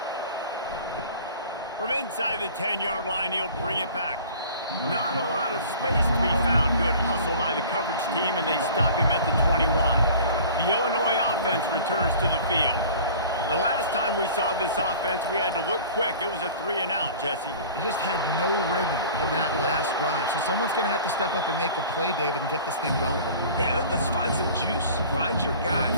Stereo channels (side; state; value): both; inverted; correlation -0.44